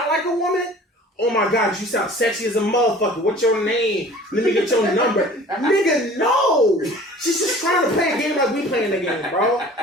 like a woman? Oh my god, you sound sexy as a motherfucker. What's your name? Let me get your number. Nigga, no! She's just trying to play a game like we playing the game, bro.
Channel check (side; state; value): both; normal; correlation 0.46